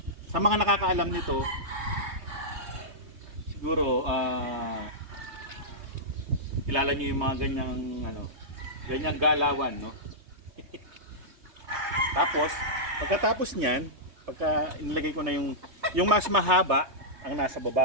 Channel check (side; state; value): left; late; 3.2 ms